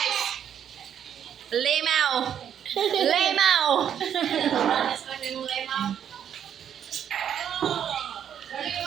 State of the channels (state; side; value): quieter; left; 9.1 dB